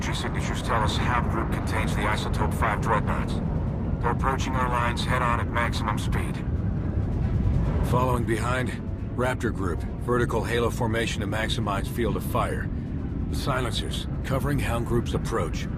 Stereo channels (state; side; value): identical; both; correlation 1.00